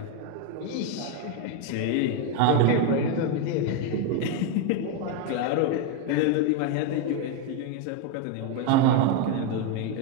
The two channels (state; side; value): different; both; correlation 0.02